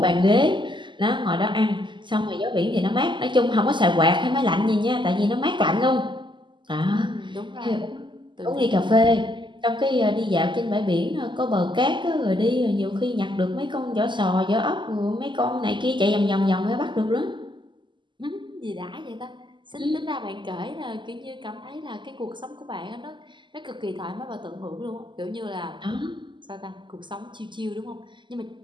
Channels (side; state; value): left; late; 0.23 ms